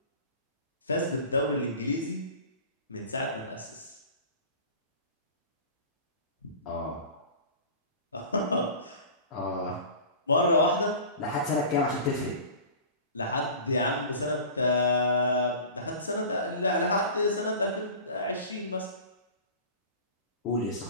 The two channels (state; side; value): inverted; both; correlation -0.38